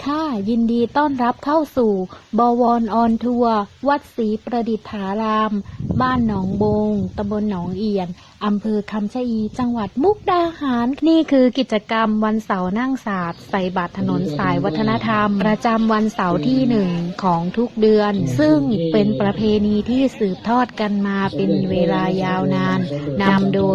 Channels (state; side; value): identical; both; correlation 1.00